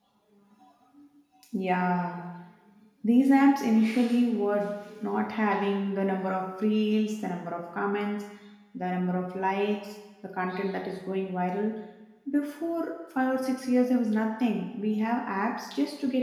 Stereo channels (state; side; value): identical; both; correlation 1.00